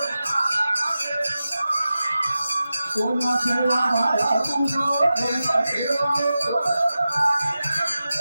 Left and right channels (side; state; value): both; inverted; correlation -0.93